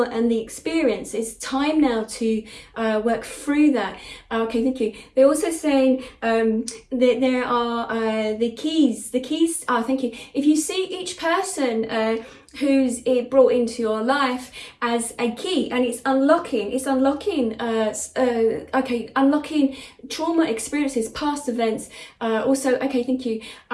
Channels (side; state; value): both; identical; correlation 1.00